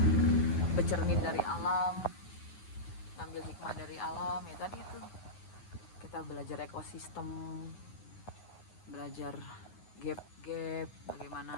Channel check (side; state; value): right; late; 9.5 ms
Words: bercermin dari alam, ngambil hikmah dari alam ya. Tadi itu kita belajar ekosistem, belajar gap